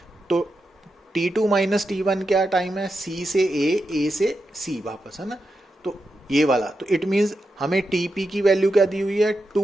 तो T2 माइनस T1 क्या टाइम है, C से A से C वापस, है ना, तो ये वाला। तो इट मीन्स हमें TP की वैल्यू क्या दी हुई है,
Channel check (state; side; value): normal; both; correlation 0.88